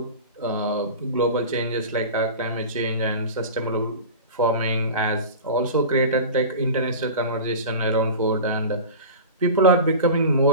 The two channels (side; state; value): both; inverted; correlation -0.33